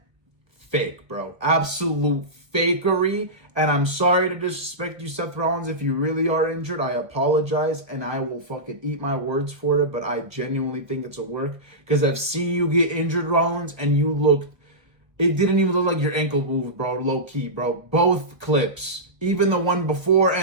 fake, bro. Absolute fakery. And I'm sorry to disrespect you, Seth Rollins. If you really are injured, I apologize, and I will fucking eat my words for it, but I genuinely think it's a work, because I've seen you get injured, Rollins, and you looked. It didn't even look like your ankle moved, bro. Low key, bro. Both clips, even the one before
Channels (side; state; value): left; late; 1.0 ms